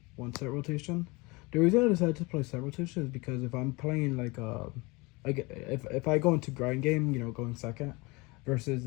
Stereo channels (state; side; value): quieter; right; 25.6 dB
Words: 1 Set Rotation. The reason I decided to play Set Rotation is because if I'm playing like if I go into grind game, you know, going second, versus